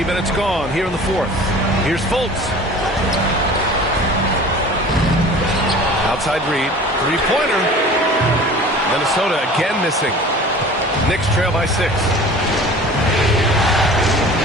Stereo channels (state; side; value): normal; both; correlation 0.43